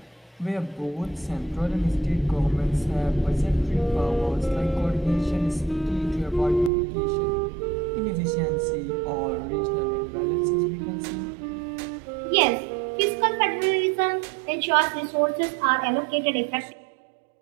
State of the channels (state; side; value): drops out; left; at 6.7 s